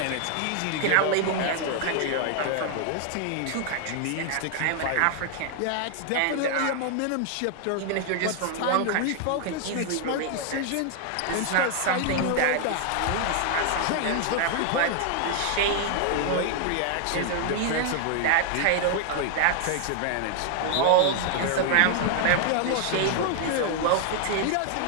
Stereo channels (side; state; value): both; different; correlation 0.00